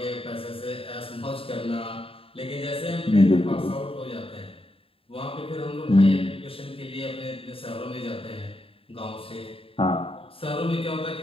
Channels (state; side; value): late; right; 0.27 ms